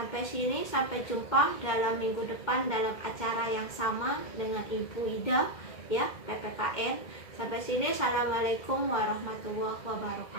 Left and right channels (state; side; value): late; right; 2.1 ms